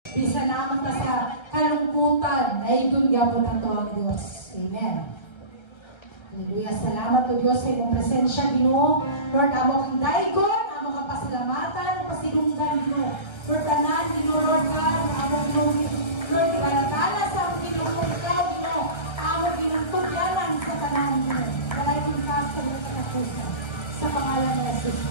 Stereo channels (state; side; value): late; right; 1.3 ms